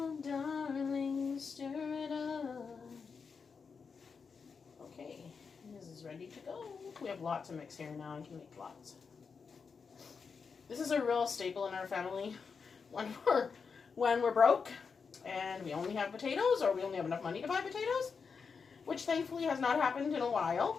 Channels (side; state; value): right; quieter; 5.5 dB